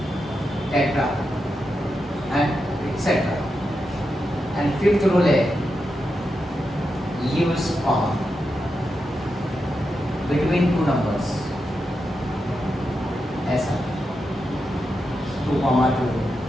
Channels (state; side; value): normal; both; correlation 0.87